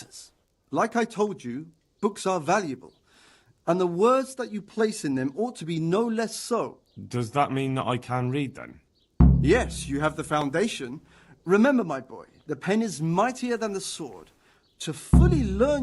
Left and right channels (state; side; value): identical; both; correlation 1.00